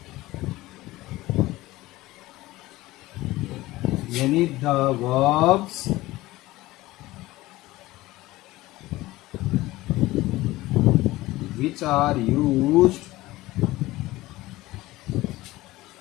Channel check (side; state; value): right; quieter; 18.2 dB